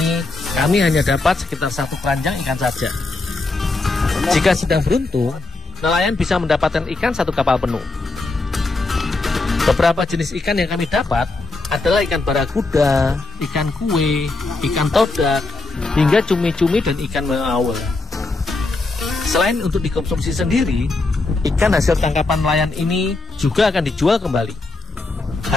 kami hanya dapat sekitar 1 keranjang ikan saja. Jika sedang beruntung, nelayan bisa mendapatkan ikan 1 kapal penuh. Beberapa jenis ikan yang kami dapat adalah ikan barakuda, ikan kue, ikan todak, hingga cumi-cumi dan ikan meawel. Selain untuk dikonsumsi sendiri, ikan hasil tangkapan nelayan ini juga akan dijual kembali.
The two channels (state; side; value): quieter; right; 3.2 dB